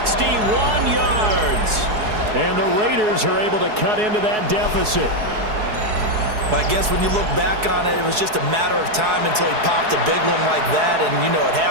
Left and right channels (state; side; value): late; left; 4.7 ms